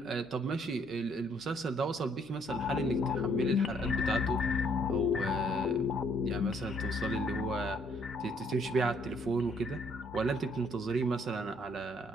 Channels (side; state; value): left; noise; hum, 30 dB below the sound